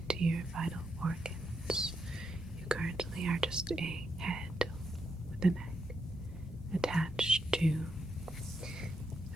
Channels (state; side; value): normal; both; correlation 0.82